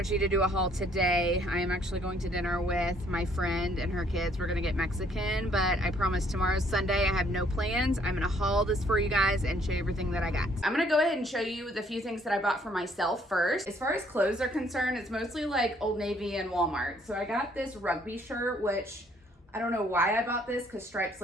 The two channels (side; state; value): both; normal; correlation 0.65